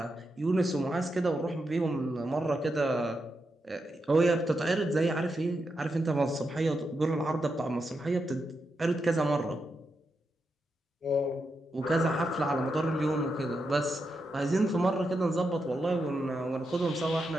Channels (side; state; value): both; normal; correlation 0.85